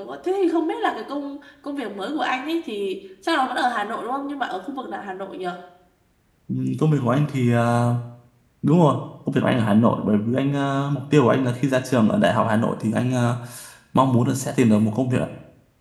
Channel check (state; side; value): identical; both; correlation 1.00